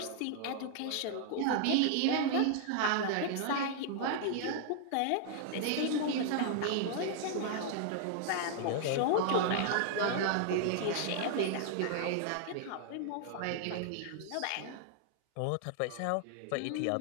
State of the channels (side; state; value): both; different; correlation 0.00